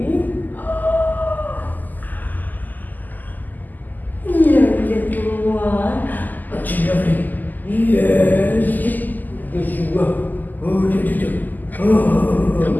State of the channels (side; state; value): right; late; 0.084 ms